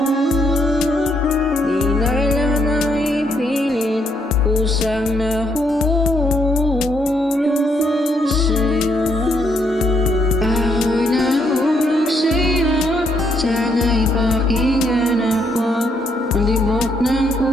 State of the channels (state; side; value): normal; both; correlation 0.74